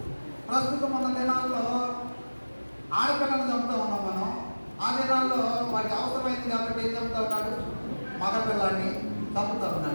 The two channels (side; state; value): both; inverted; correlation -1.00